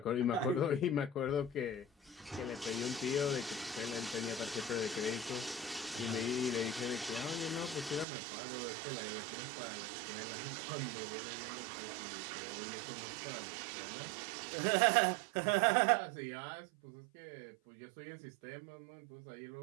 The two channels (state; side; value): drops out; left; at 8.1 s